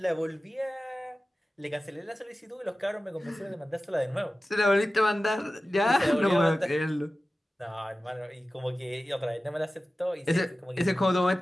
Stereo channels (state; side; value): normal; both; correlation 0.95